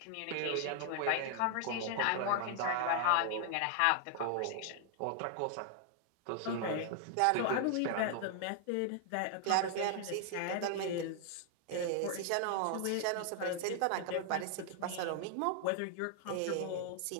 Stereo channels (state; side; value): different; both; correlation 0.00